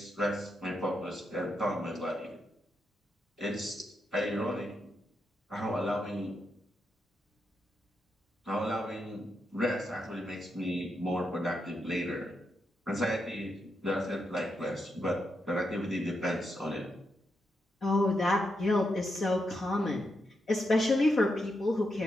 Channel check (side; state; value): both; normal; correlation 0.84